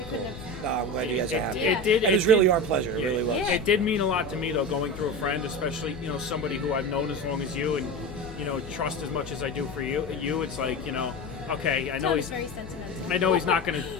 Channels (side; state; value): left; noise; hum, 13 dB below the sound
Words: couldn't have. No, I'm glad you guys are happy. Yeah. It did. It was really our pleasure. It really was. Yeah. It did mean a lot to me though, going through a friend, especially somebody who I've known as long as you, and trust as much as I do for you. It's like okay, I know Tom's he's. very sentimental. I know he's not going